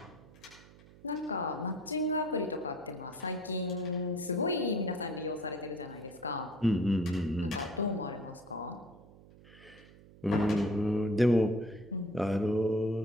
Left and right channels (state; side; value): noise; right; hum, 22 dB below the sound